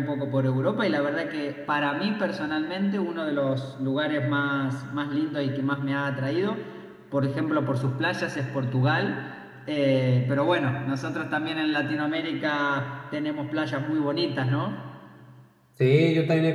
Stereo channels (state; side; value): identical; both; correlation 1.00